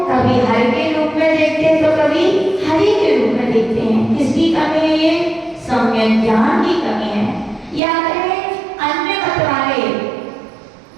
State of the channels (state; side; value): drops out; left; at 7.8 s